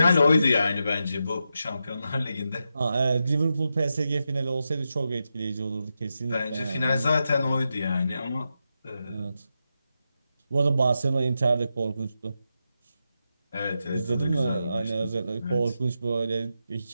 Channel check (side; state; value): both; inverted; correlation -0.87